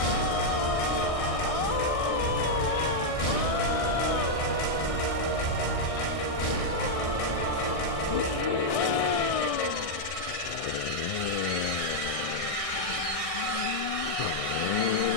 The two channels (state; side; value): late; right; 1.6 ms